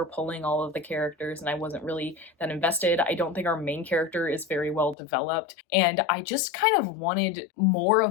pulling all of the characters, and I wasn't really that invested. I don't think our main character is very well developed, and I just kind of wanted more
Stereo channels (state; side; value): drops out; right; at 5.0 s